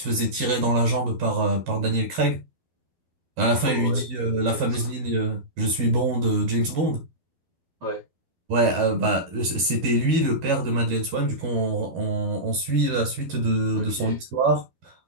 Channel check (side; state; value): left; late; 13 ms